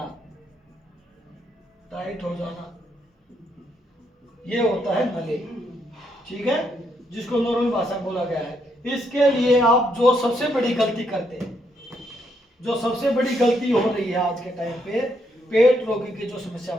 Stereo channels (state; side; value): normal; both; correlation 0.76